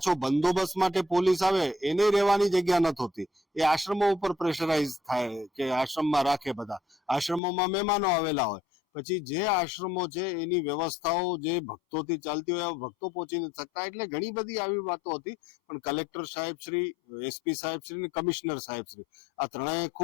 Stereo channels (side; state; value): right; drops out; at 7.4 s